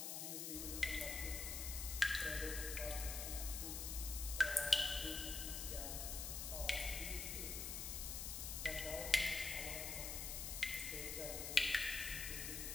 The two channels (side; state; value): left; noise; hiss, 3 dB below the sound